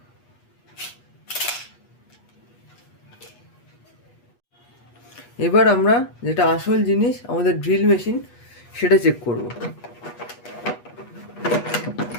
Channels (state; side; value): late; right; 8.3 ms